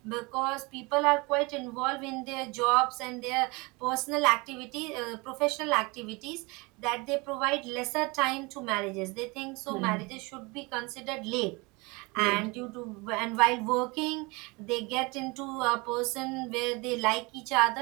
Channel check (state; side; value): quieter; left; 26.1 dB